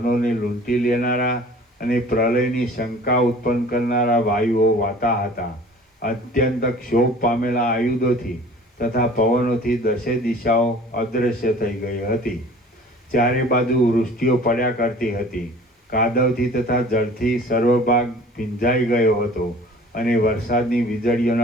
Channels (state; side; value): normal; both; correlation 0.47